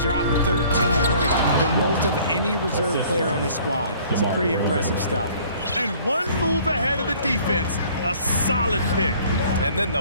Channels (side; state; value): both; inverted; correlation -0.54